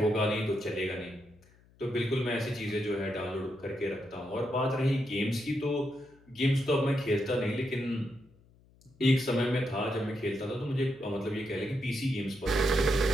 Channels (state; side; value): noise; left; hum, 29 dB below the sound